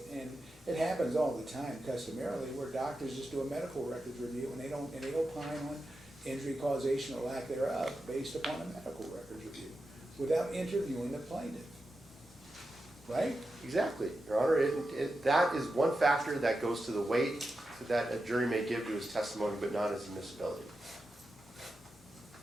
and it happens all the time customarily, where doctors just do a medical records review and they opine on injury causation or lack thereof based upon a medical records review without interviewing the plaintiff. Right? Exactly, Your Honor. That is one factor that goes to the weight that a jury may give to his testimony, but not his admissibility.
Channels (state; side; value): normal; both; correlation 0.90